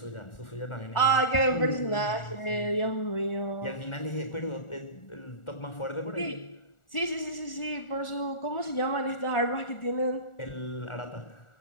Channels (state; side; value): late; right; 1.4 ms